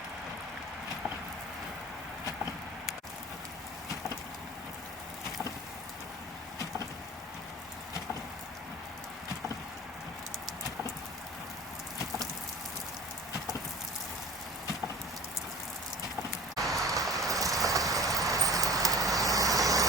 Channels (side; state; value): both; normal; correlation 0.42